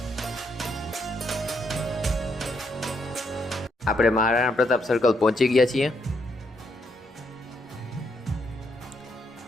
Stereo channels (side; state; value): both; normal; correlation 0.76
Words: આપણે મહારાણા પ્રતાપ સર્કલ પહોંચી ગયા છીએ।